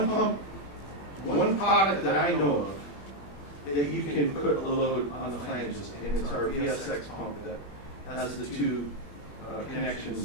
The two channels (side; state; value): right; late; 21 ms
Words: pump, one product that I know of that you can put a load on the flanges, and it's our VSX pump that has the two